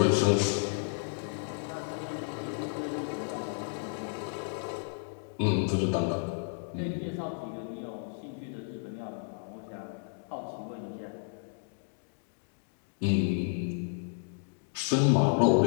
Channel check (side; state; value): right; silent; digital silence